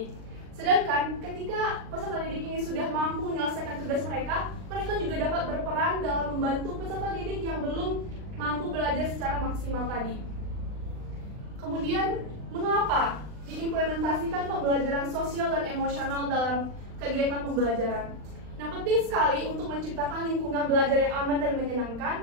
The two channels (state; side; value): late; left; 39 ms